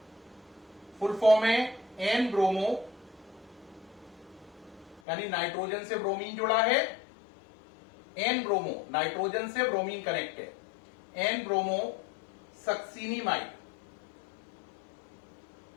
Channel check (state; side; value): drops out; right; at 5.0 s